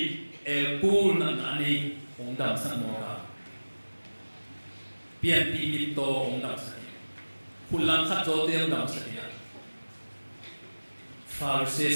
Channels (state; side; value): inverted; both; correlation -1.00